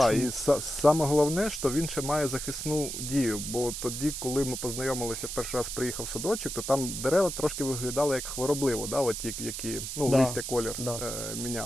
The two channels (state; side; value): noise; right; hiss, 6 dB below the sound